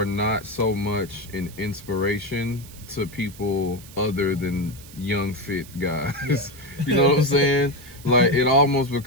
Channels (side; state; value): right; noise; hiss, 19 dB below the sound